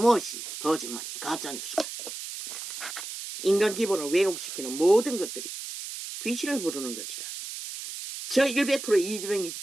거짓말이 가짜뉴스가. 인간 기본을 왜곡시키는 모든 것들이 귀신을 부르는 것이라. 저 100% 이재명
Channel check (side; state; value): right; noise; hiss, 8 dB below the sound